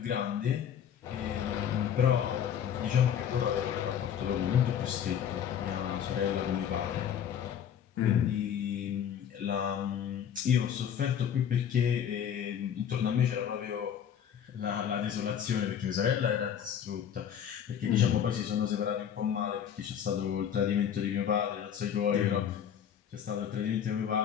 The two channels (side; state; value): right; quieter; 8.8 dB